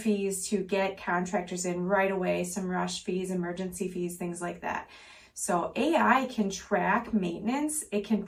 to get contractors in right away, some rush fees, emergency fees, things like that. So AI can track maintenance, it can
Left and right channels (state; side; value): identical; both; correlation 1.00